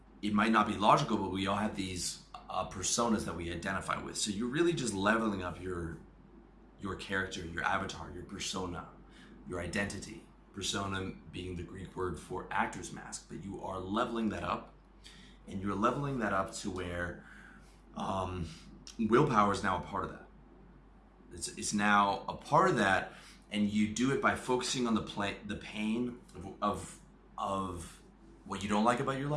it might not be logical, but we all have these personas that we identify with. So you're really just leveling up your character, your avatar, your persona, your identity. Persona being the Greek word for actor's mask, but you are leveling that up, and you're leveling that up to where willpower is now a part of that. It's now a part of that, and you do it by focusing on the pain of what you don't like about your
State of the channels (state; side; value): identical; both; correlation 1.00